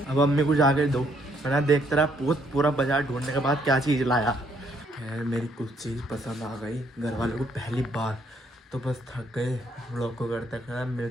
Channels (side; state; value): both; normal; correlation 0.69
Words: अब अम्मी को जाके दो, मैंने देखता रहा पूरा बाजार ढूंढने के बाद क्या चीज़ लाया। खैर मेरी कुछ चीज़ पसंद आ गई घर वालों को पहली बार, तो बस थक गए। व्लॉग को करते करना,